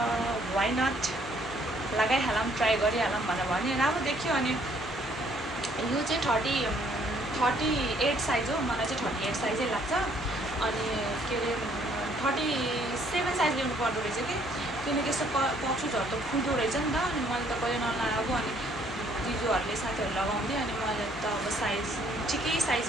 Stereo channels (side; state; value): both; normal; correlation 0.64